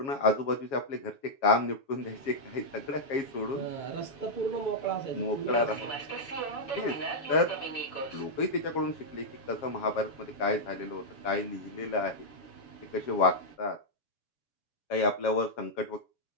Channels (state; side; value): late; right; 7.3 ms